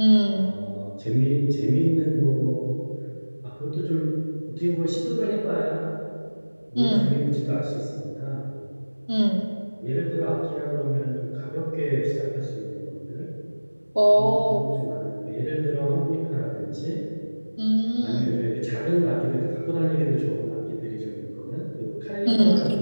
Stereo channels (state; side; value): inverted; both; correlation -1.00